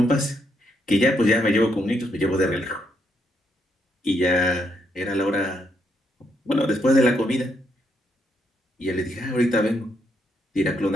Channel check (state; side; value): normal; both; correlation 0.76